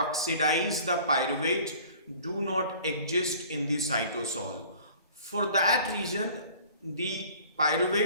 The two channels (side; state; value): both; inverted; correlation -0.48